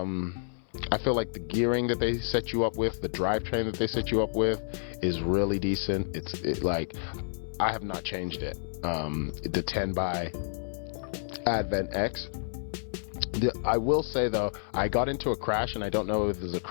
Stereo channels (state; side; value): silent; right; 57 dB below the other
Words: feel like the gearing that they set you up with, the drivetrain that they set you up with, is really decent. I have not changed it. The 10 by Advent X. I will say though, I got into a crash, and I don't know if there's a